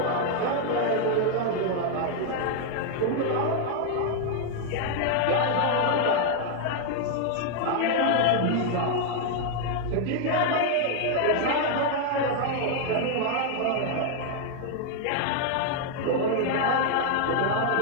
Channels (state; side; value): different; both; correlation 0.00